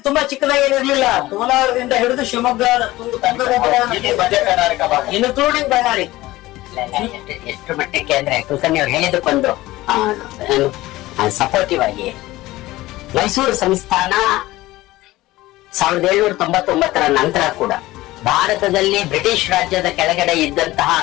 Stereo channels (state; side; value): quieter; right; 17.8 dB